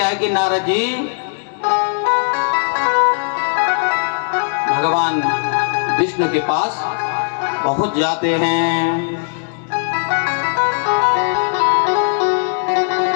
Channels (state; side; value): silent; right; 60 dB below the other